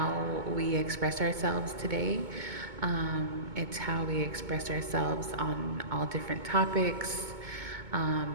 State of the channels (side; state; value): left; late; 2.2 ms